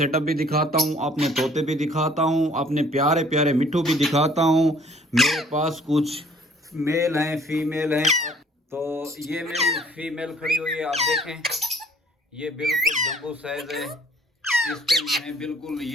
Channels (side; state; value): both; normal; correlation 0.57